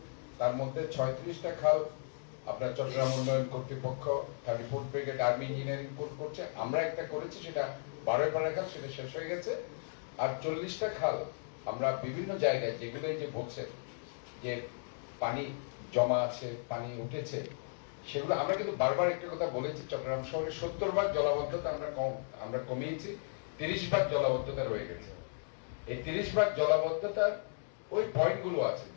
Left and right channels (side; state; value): right; silent; digital silence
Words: তার মধ্যে 36টা খাল আপনার চট্টগ্রাম উন্নয়ন কর্তৃপক্ষ 34th brigade army engineering course করছে। আমরা একটা করেছি, সেটা 12 খাল, সেটা শেষ হয়ে গেছে। আর 40টা খাল আমরা বিভিন্ন জায়গায় যেগুলো যে বলছে যে পানি জমা আছে, পানি উঠেছে, সেগুলো আমরা কিন্তু বারবার একটা কথা বলেছি, চট্টগ্রাম শহরে 70 ভাগ জলাবদ্ধতা আমরা কমিয়েছি, 30 ভাগ জলাবদ্ধতা রয়ে গেছে। এই 30 ভাগ জলাবদ্ধতার ওই পয়েন্টগুলো আছে।